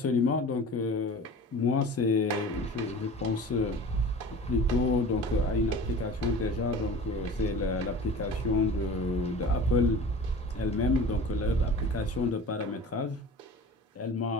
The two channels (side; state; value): both; normal; correlation 0.39